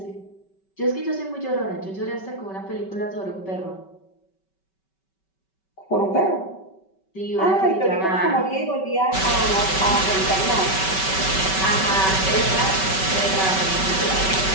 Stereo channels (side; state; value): right; late; 5.2 ms